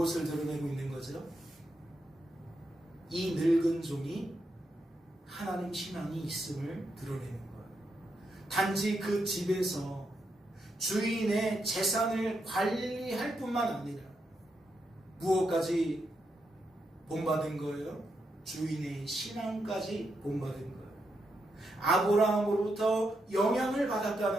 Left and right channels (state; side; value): normal; both; correlation 0.83